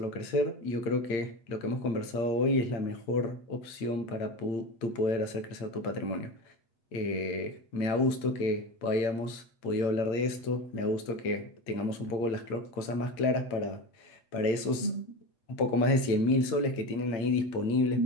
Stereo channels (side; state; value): right; late; 8.7 ms